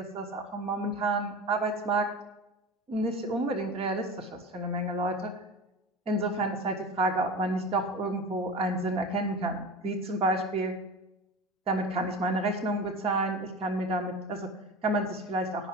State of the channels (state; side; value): normal; both; correlation 0.31